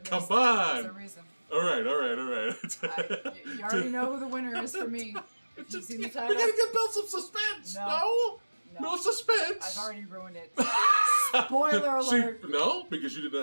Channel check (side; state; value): both; inverted; correlation -1.00